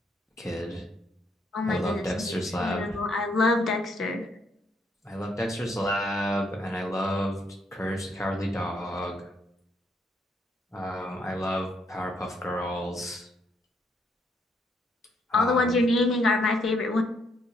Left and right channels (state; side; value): normal; both; correlation 0.72